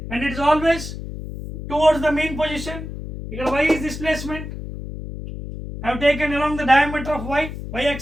and it is always towards the mean position. Here y is displacement. I have taken along the diameter of y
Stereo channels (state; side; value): noise; left; hum, 9 dB below the sound